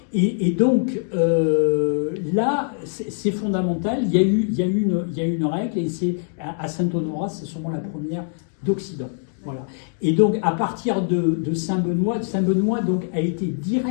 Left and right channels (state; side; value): silent; right; digital silence